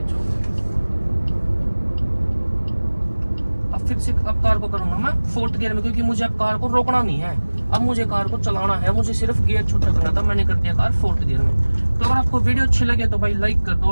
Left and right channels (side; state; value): both; inverted; correlation -1.00